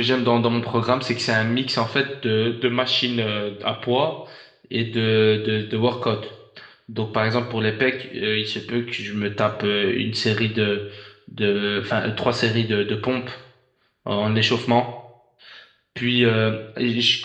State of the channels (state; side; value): identical; both; correlation 1.00